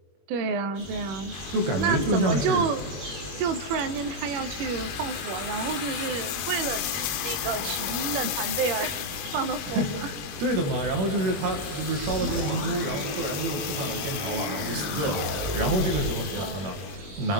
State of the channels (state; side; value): late; left; 21 ms